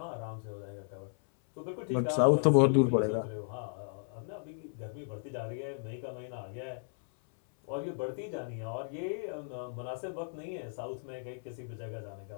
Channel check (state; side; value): silent; right; 55 dB below the other